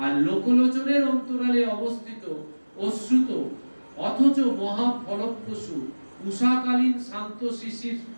আর লোকলোচনের অন্তরালে অবস্থিত অশ্রুত অথচ মহা ফলপ্রসূ উষাকালীন শান্ত শিশির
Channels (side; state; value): both; inverted; correlation -1.00